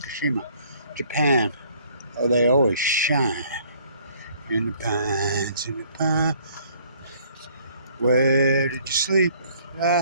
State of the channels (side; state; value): both; inverted; correlation -0.60